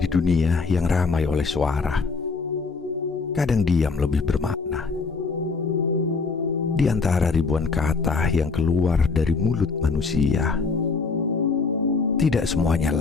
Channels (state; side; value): quieter; right; 4.4 dB